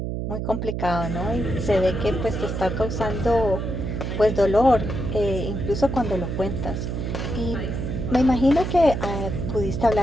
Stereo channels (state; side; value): noise; right; hum, 3 dB below the sound